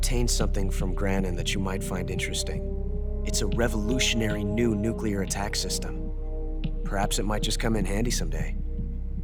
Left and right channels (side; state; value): both; identical; correlation 1.00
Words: something from Granin that you might find interesting. It's a revolutionary new nuclear attack system. Perhaps it might just come in handy someday.